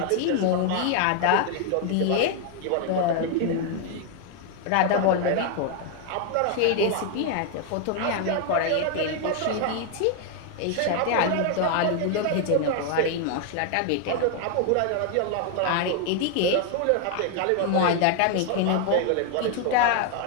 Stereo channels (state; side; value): different; both; correlation 0.00